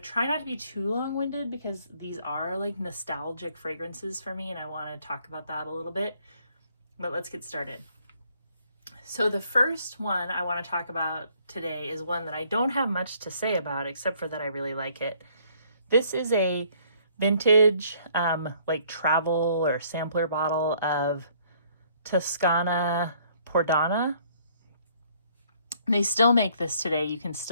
not to be too long-winded because these are like nostalgic fragrances for me and I want to talk about that a little bit. But let's get started. So the first one I want to talk about today is one that I don't have much to say about except for that I really like it. This is a vintage like travel or sampler bottle of Tuscana Pana. They still make this today. You can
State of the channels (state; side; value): inverted; both; correlation -0.63